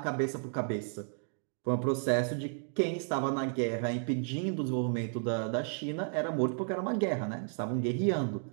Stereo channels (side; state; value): left; silent; 56 dB below the other